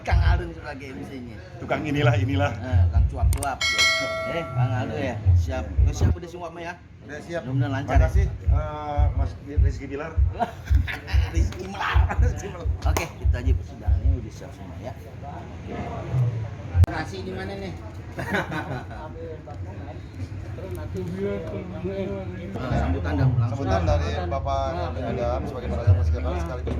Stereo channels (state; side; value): identical; both; correlation 1.00